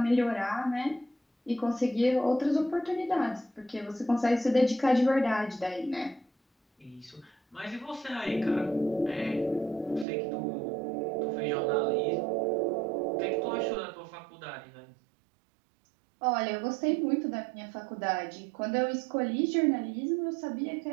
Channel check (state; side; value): drops out; left; at 10.1 s